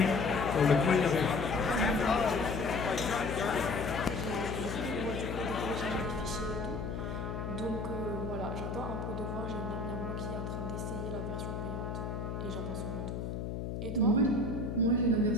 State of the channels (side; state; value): left; noise; hum, 4 dB below the sound